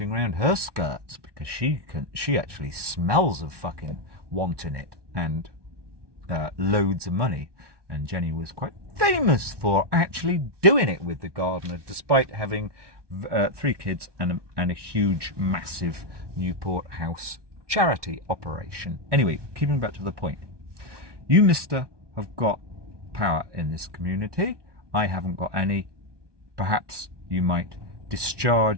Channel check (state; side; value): late; left; 1.2 ms